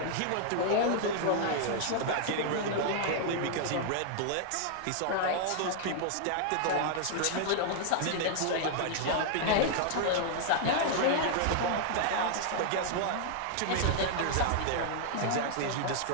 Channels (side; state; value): both; different; correlation -0.01